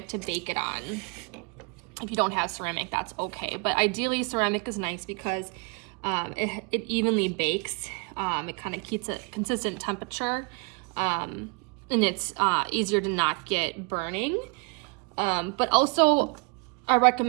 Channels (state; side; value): quieter; left; 34.0 dB